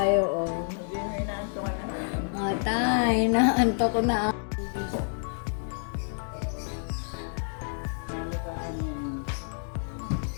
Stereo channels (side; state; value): right; silent; digital silence